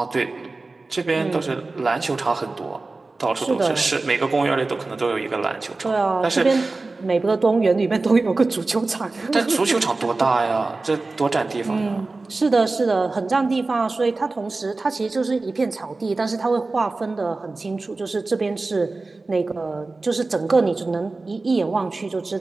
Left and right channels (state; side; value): quieter; left; 3.5 dB